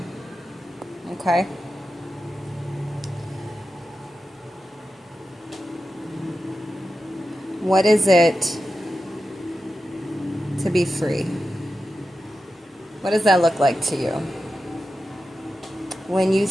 Okay? What is it to be free? What does that look like to you? When you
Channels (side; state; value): both; normal; correlation 0.91